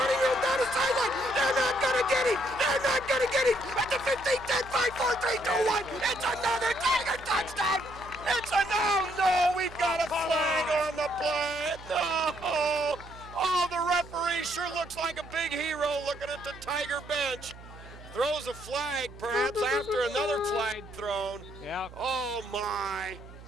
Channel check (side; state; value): right; noise; hum, 17 dB below the sound